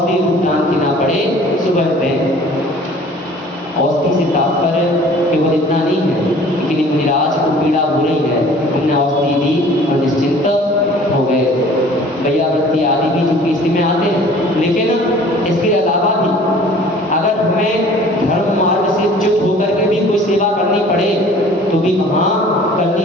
रूप दान देना पड़े, सुबह दें। औषधि से तात्पर्य केवल इतना नहीं है कि मुनिराज को पीड़ा हो रही है, हमने औषधि दी और निश्चिंत हो गए। वैयावृत्ति आदि भी चूंकि इसी में आते हैं, लेकिन इसके अलावा भी अगर हमें धर्म मार्ग से च्युत होकर के भी कोई सेवा करनी पड़े तो भी वहाँ करनी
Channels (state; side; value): normal; both; correlation 0.49